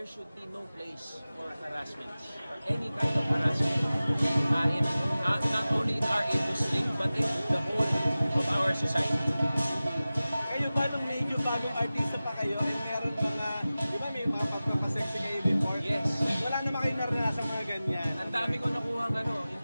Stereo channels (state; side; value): inverted; both; correlation -0.96